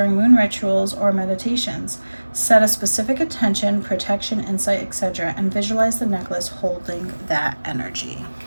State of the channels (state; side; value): inverted; both; correlation -1.00